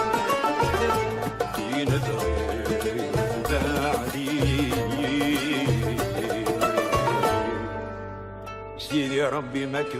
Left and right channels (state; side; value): identical; both; correlation 1.00